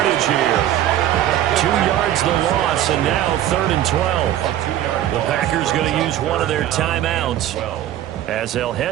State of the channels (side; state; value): left; quieter; 12.3 dB